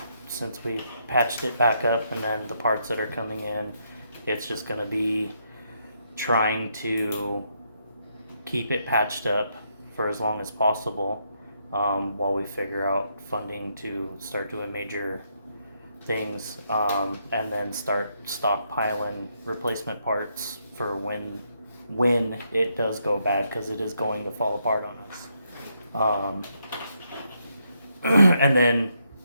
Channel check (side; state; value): both; inverted; correlation -0.77